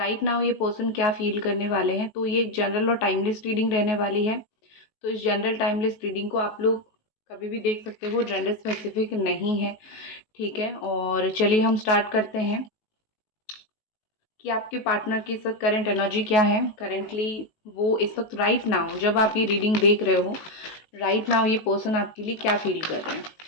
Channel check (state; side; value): late; right; 18 ms